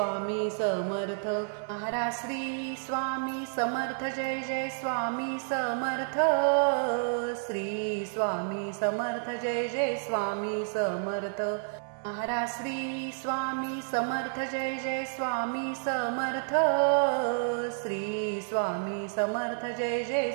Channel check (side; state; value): left; silent; digital silence